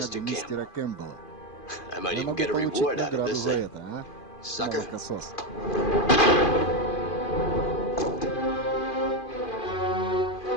Campbell. I might even get a reward out of this, eh? Sucker.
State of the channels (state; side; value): late; right; 2.5 ms